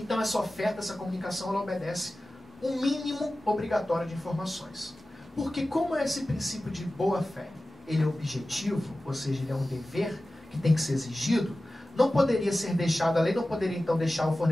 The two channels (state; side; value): normal; both; correlation 0.96